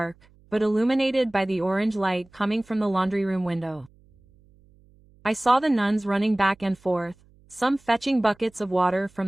but illuminated by the orange light coming from the laundry room window. I saw the nuns running back and forth, some fetching buckets of water from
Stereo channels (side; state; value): right; noise; hum, 30 dB below the sound